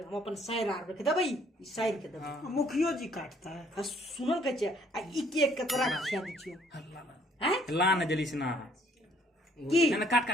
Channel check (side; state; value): both; normal; correlation 0.62